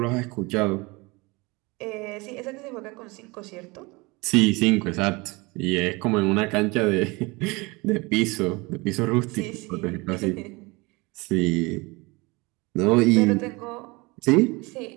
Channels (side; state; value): left; quieter; 25.1 dB